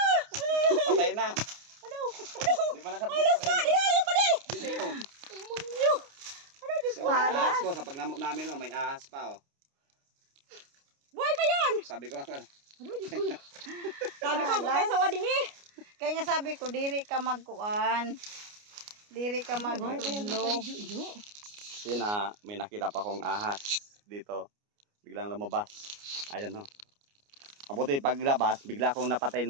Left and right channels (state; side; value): late; left; 29 ms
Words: Patay na. Ano? Di ba nakatulog? Ayaw pa di! Dito ko. Imunyo! Ano, Diyos So, ko? may ahas ko. Sa pagnamok namin, may ahas pa. Buhay pa yun! Sabi ko, Ano, Diyos ko? Sabi ko, bukay sa wading eh. Kaya nga sabi ko, diri ka magkuan. Diri ka magtulog. yun may nakita pa akong ahas dito. Biglang lumabas. Ayan no. Mabuti paglabas, bigla akong napatay